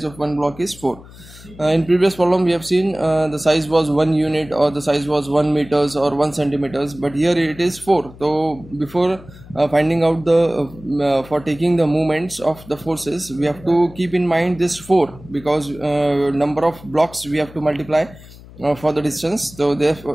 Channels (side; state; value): left; noise; hum, 20 dB below the sound